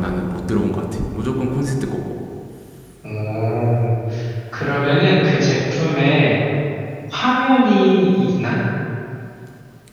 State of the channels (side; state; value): both; identical; correlation 1.00